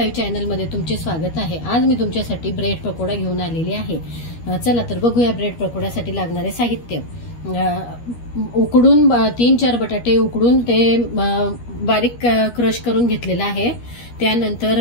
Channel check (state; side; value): late; right; 13 ms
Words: चॅनलमध्ये तुमचे स्वागत आहे। आज मी तुमच्यासाठी ब्रेड पकोडा घेऊन आलेली आहे। चला तर बघूया ब्रेड पकोड्यासाठी लागणारे साहित्य। उकडून 3-4 बटाटे उकडून ते बारीक क्रश करून घेतलेला आहे।